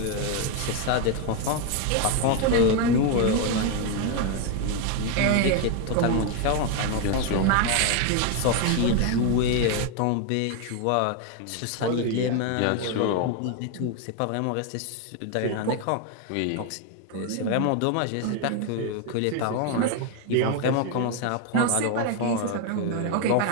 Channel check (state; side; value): different; both; correlation 0.01